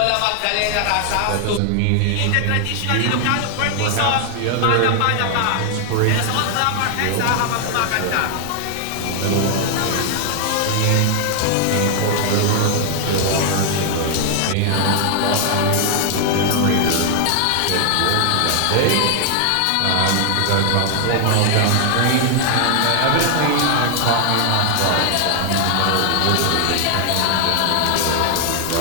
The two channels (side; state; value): both; different; correlation 0.00